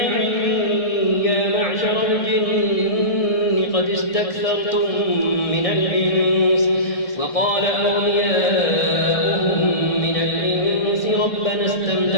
يا معشر الجن قد استكثرتم من الإنس وقال أولياؤهم من الإنس ربنا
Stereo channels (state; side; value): late; right; 1.6 ms